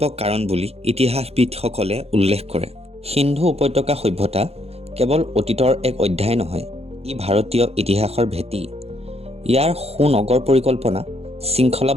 কাৰণ বুলি ইতিহাসবিদসকলে উল্লেখ কৰে। সিন্ধু উপত্যকা সভ্যতা কেৱল অতীতৰ এক অধ্যায় নহয়, ই ভাৰতীয় ইতিহাসৰ ভেটি। ইয়াৰ সুনগৰ পৰিকল্পনা,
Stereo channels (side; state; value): left; late; 0.29 ms